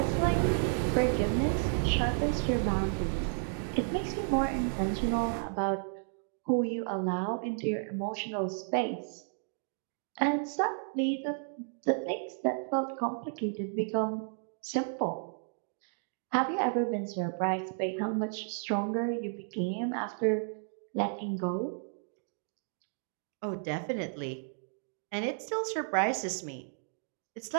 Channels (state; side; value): silent; left; digital silence